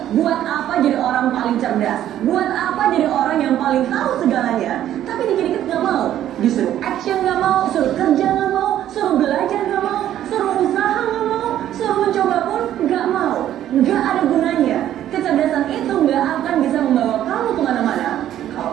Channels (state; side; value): quieter; left; 11.8 dB